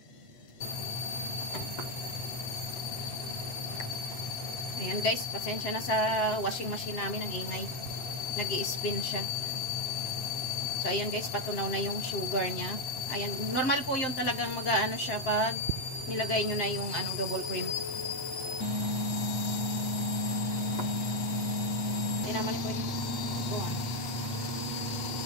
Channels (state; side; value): late; right; 7.6 ms